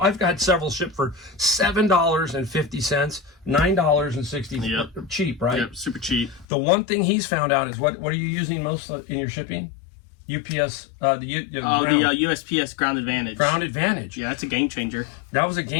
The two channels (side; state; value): right; drops out; at 6.5 s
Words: got several shipped for $7.50, $9.60. Yep. Cheap, right? Yep, super cheap. The one thing he's found out is what are you using most in your shipping? UPS, the USPS Ground Advantage. Ground Advantage. Yeah, that's a game changer. That was a